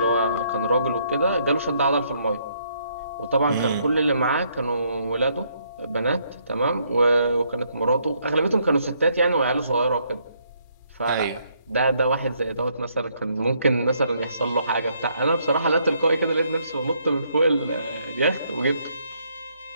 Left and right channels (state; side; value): inverted; both; correlation -0.71